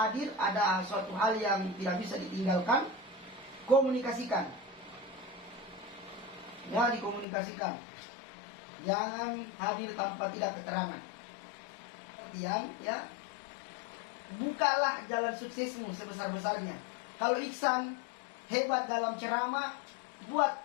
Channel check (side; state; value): right; drops out; at 7.2 s